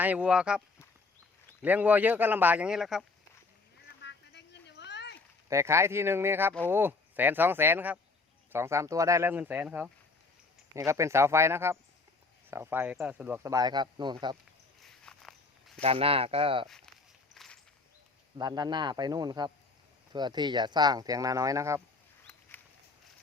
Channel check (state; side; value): quieter; right; 3.8 dB